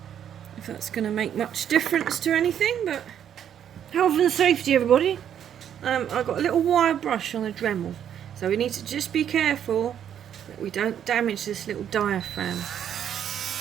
if that's going to make much difference to anything, but health and safety, everybody. I've got a little wire brush on the Dremel, so we need to just be careful that we don't damage this little diaphragm.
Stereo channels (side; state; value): left; quieter; 9.4 dB